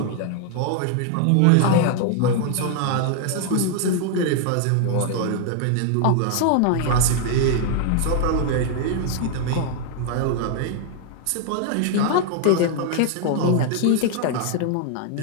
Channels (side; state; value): both; different; correlation 0.00